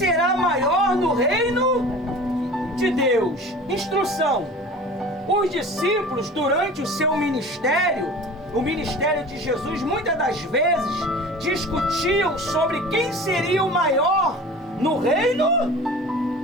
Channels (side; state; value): both; normal; correlation 0.40